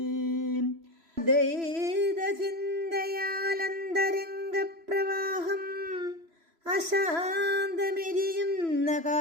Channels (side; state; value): left; late; 3.0 ms